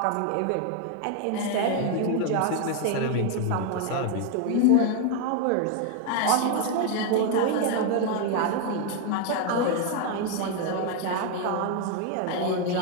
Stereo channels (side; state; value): both; different; correlation 0.01